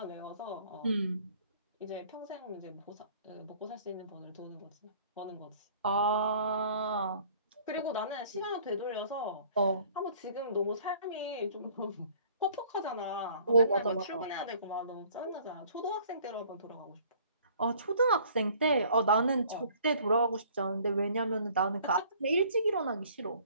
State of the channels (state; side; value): inverted; both; correlation -0.54